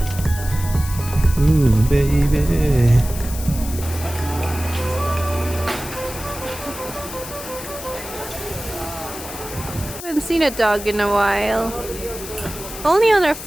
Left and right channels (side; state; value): left; noise; hiss, 11 dB below the sound